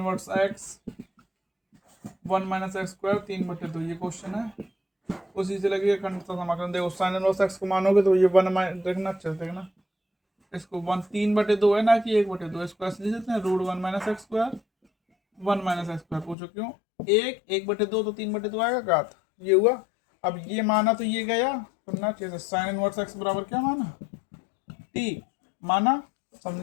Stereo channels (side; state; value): right; drops out; at 16.4 s